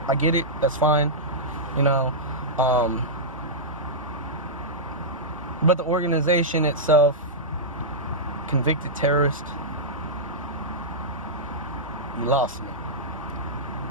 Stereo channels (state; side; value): normal; both; correlation -0.11